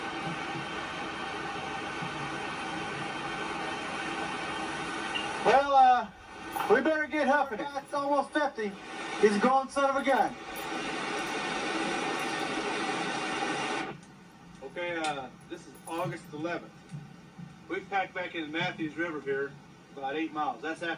Well, we better get huffing it. It's almost 50. He's a going son of a gun. Okay, this is August 11th. We've packed back into Matthews River here about 8 miles. That's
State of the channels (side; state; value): both; identical; correlation 1.00